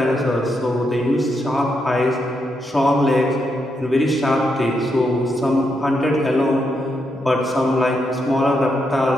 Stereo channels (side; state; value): both; normal; correlation 0.81